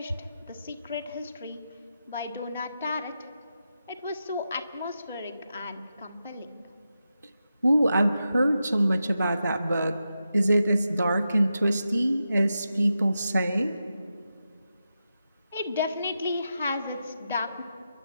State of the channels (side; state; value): both; inverted; correlation -0.88